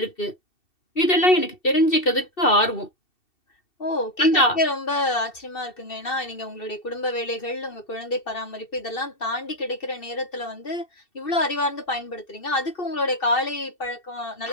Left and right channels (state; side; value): late; right; 2.7 ms